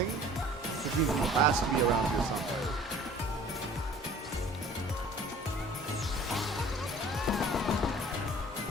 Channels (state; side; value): normal; both; correlation 0.49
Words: Which means he has to be around here somewhere.